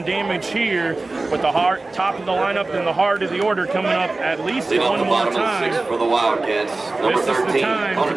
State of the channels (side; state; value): left; quieter; 3.3 dB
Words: damage here with the top of the lineup and the heart of the order coming up at least one more time. For the Wildcats, number This is 13, the time to